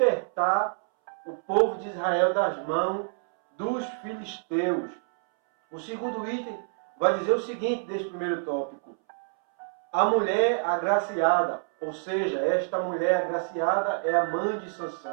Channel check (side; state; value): left; silent; 60 dB below the other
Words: o povo de Israel das mãos dos filisteus. O segundo item vai dizer o seguinte deste primeiro tópico: a mulher agraciada, ou seja, esta mulher agraciada é a mãe de